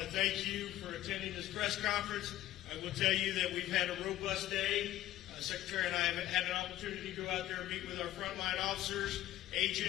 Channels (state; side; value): quieter; right; 14.2 dB